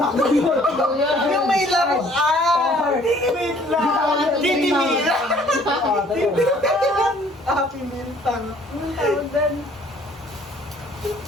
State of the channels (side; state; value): both; normal; correlation 0.57